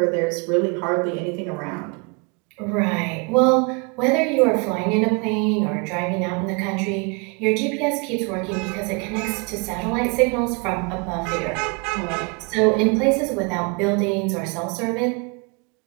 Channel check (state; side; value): quieter; left; 31.9 dB